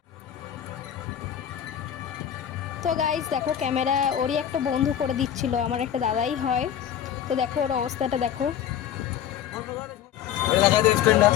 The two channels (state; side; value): quieter; right; 10.0 dB